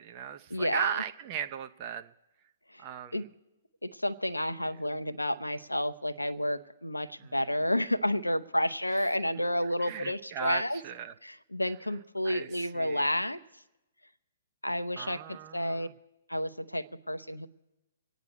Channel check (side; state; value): both; inverted; correlation -0.89